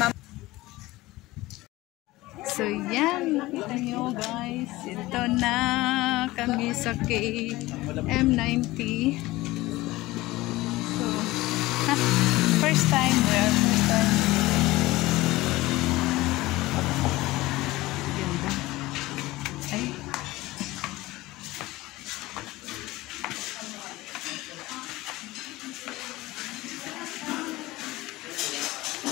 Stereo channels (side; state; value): right; quieter; 19.0 dB